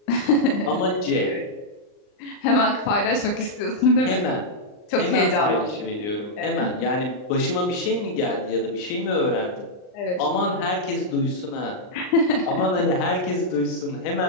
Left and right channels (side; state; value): right; late; 39 ms